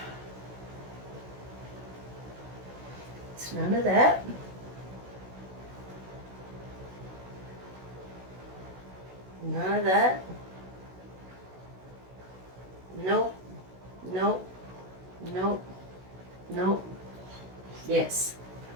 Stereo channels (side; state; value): left; late; 16 ms